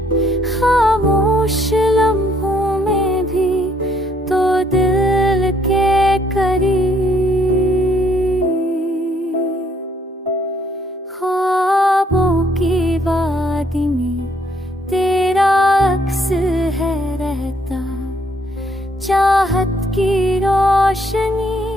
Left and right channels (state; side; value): normal; both; correlation 0.68